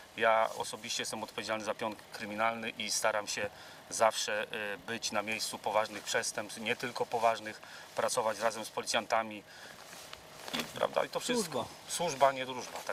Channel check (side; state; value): both; identical; correlation 1.00